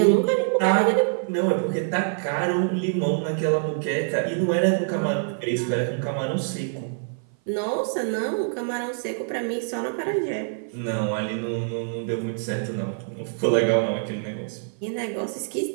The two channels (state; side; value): silent; left; 56 dB below the other